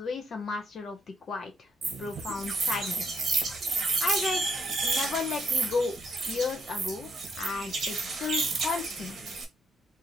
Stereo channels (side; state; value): both; normal; correlation 0.74